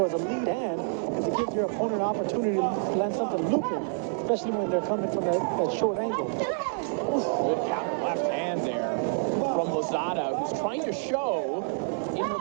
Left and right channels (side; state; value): left; silent; digital silence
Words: as a lead hand, because it gives your opponent an opportunity to land something looping, especially when they're coming from that short angle. Good counter left hand there from Lozada, who's trying to show in her